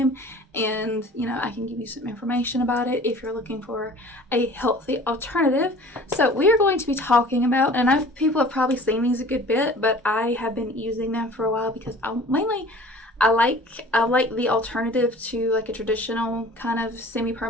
and I can give you some information about it if you're looking for a healthy alternative. So we are going to be talking about, and I know people have probably seen these a good bit, but I have been using them for a while because I like the alternative to like a traditional kind of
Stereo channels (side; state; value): both; normal; correlation 0.46